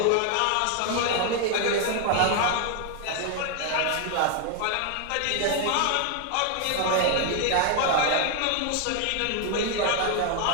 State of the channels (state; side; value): different; both; correlation 0.01